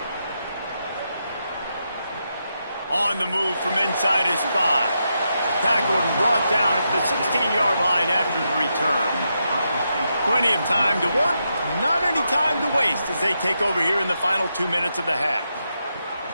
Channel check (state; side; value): inverted; both; correlation -0.84